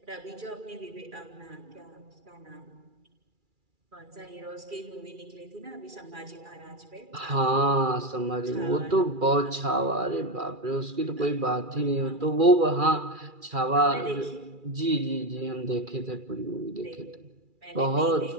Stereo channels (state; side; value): late; left; 2.4 ms